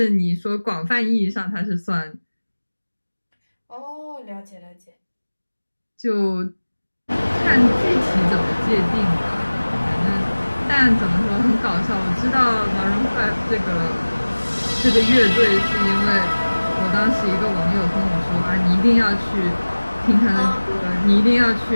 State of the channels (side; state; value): both; inverted; correlation -1.00